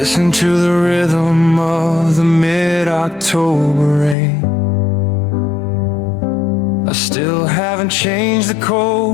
to the rhythm of the mid-October rain. I still haven't changed the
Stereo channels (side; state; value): right; drops out; at 4.2 s